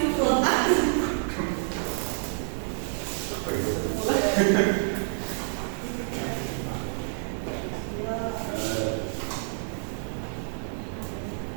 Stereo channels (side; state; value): left; silent; digital silence